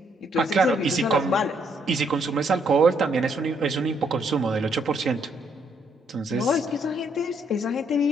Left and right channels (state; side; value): normal; both; correlation 0.72